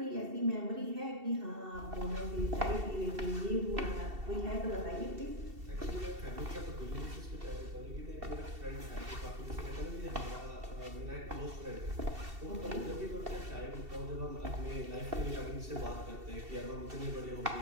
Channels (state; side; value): late; left; 2.7 ms